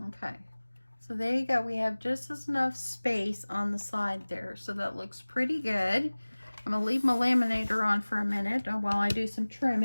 Okay, so there you go. We have just enough space on the side there, so that looks pretty good. I'm going to leave my laminator on for a minute while I do some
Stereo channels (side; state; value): both; inverted; correlation -1.00